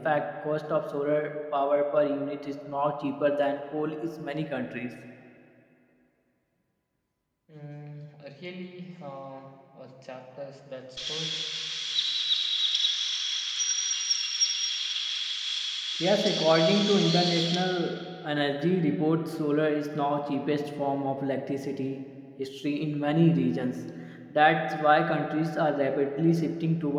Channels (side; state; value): both; identical; correlation 1.00